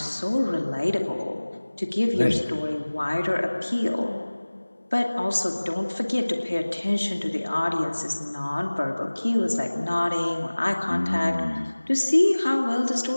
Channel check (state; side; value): inverted; both; correlation -1.00